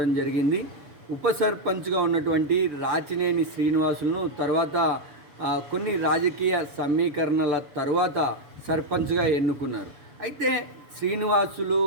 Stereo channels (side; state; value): left; late; 6.9 ms